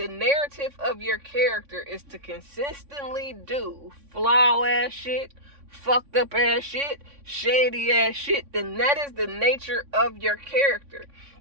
narrative of your character is to consistently do flaw ass shit, fucked up ass shit, shady ass shit, then that is the nature of your character.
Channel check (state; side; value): late; left; 3.5 ms